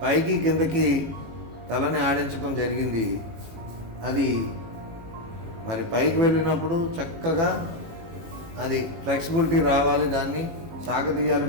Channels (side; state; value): left; late; 18 ms